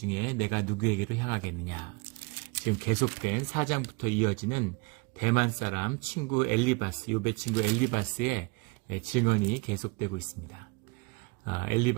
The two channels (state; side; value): quieter; left; 27.5 dB